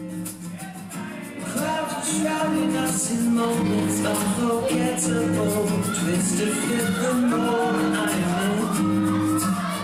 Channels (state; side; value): identical; both; correlation 1.00